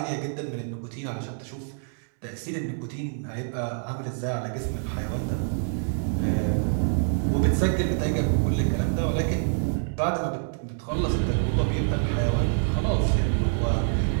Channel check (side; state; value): left; silent; digital silence